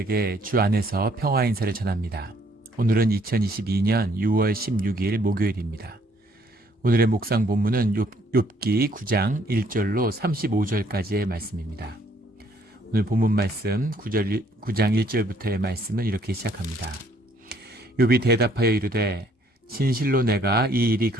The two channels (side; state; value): both; normal; correlation 0.65